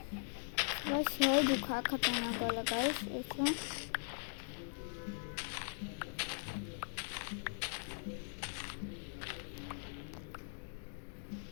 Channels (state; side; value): silent; right; digital silence